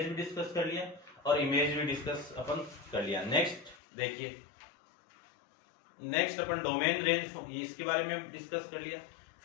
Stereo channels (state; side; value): drops out; right; at 3.8 s